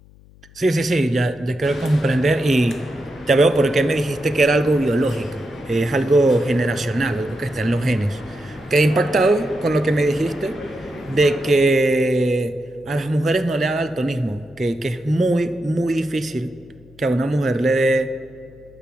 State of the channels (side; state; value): left; noise; hum, 25 dB below the sound